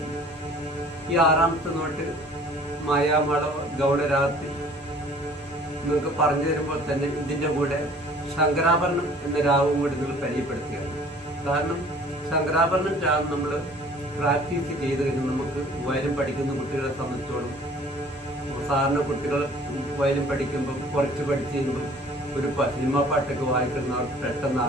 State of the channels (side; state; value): both; normal; correlation 0.52